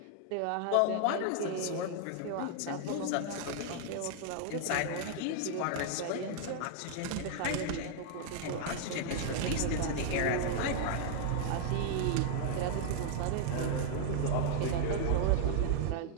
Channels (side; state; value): both; different; correlation -0.01